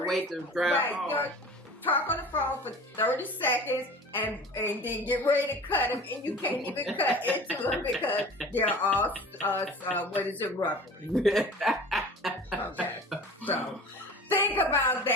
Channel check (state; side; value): normal; both; correlation 0.40